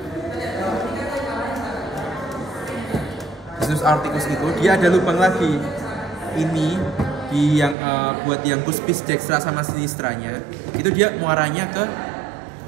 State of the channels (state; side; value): drops out; left; at 7.8 s